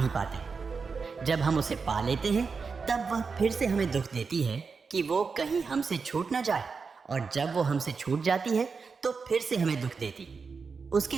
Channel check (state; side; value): quieter; left; 5.0 dB